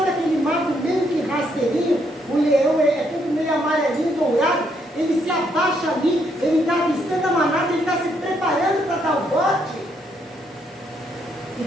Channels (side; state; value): both; normal; correlation 0.74